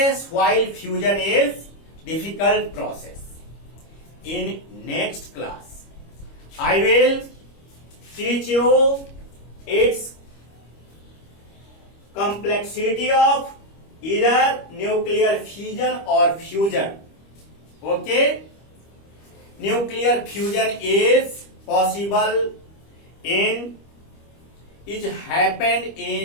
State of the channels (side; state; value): right; late; 25 ms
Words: while fusion is difficult process. In next class I will teach you its complexity of either nuclear fission or fusion. Okay, nuclear fusion is possible in, it happened